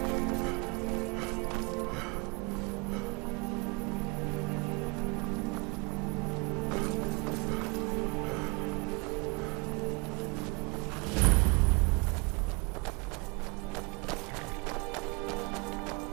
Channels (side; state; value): left; quieter; 30.0 dB